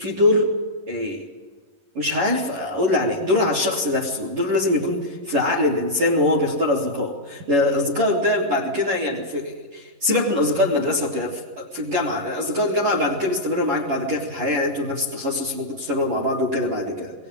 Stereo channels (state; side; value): late; left; 11 ms